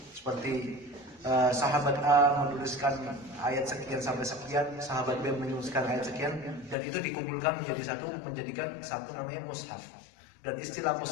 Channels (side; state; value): right; drops out; at 6.8 s